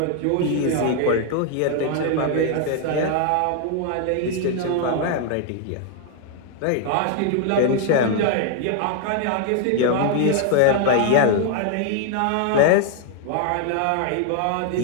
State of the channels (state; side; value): different; both; correlation 0.00